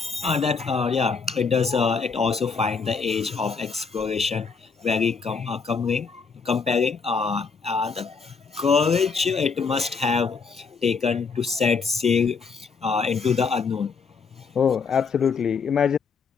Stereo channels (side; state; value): right; quieter; 5.2 dB